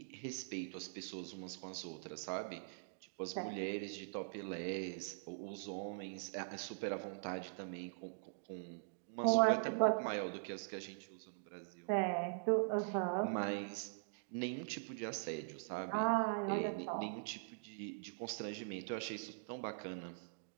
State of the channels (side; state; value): left; silent; digital silence